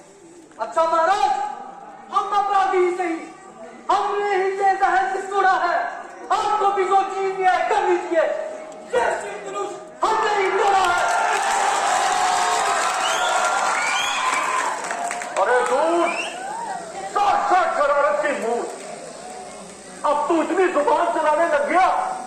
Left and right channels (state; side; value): identical; both; correlation 1.00